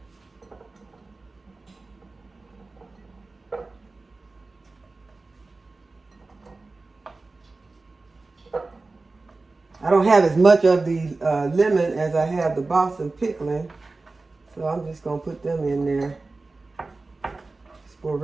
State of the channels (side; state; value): left; quieter; 3.5 dB